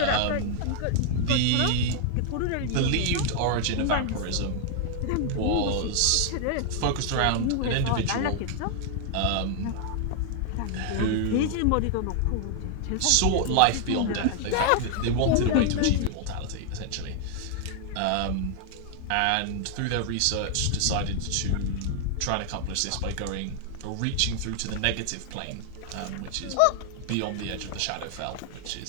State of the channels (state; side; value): different; both; correlation 0.00